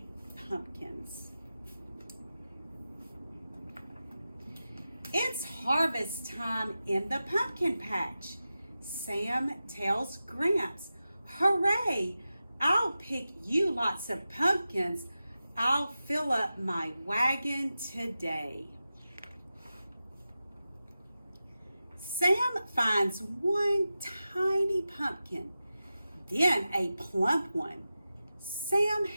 Pumpkins. It's harvest time in the pumpkin patch. Sam tells Gramps, "Hooray! I'll pick you lots of pumpkins. I'll fill up my wagon today." Sam finds one tiny pumpkin, then a plump one. Sam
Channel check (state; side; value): inverted; both; correlation -0.93